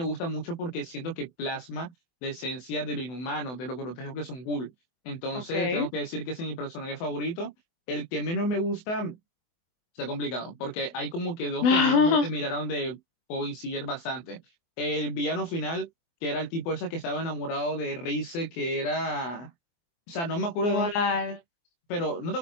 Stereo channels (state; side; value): late; right; 24 ms